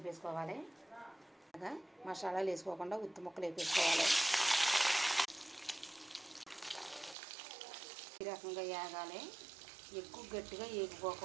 మసాలాలు వేసుకోకుండా ఉత్తి ముక్కలు వేసుకోవాలి. ఈ రకంగా వేగాలి, ఎక్కువ గట్టిగా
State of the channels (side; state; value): left; drops out; at 7.2 s